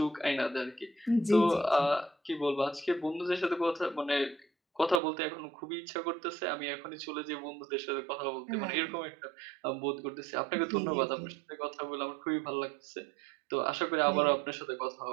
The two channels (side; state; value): left; drops out; at 5.0 s